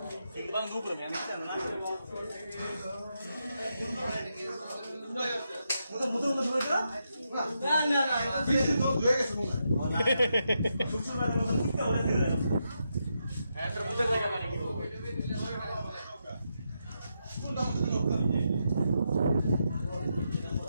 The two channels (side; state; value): both; inverted; correlation -0.83